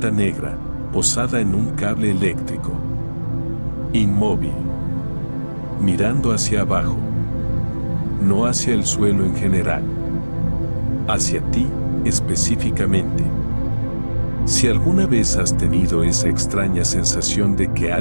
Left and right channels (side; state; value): both; inverted; correlation -1.00